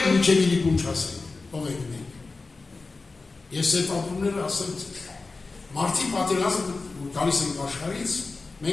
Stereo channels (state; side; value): quieter; right; 3.8 dB